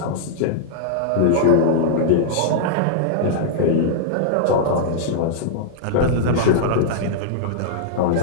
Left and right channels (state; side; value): different; both; correlation -0.02